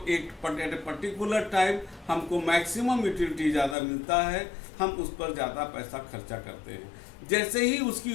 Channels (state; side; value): drops out; right; at 3.8 s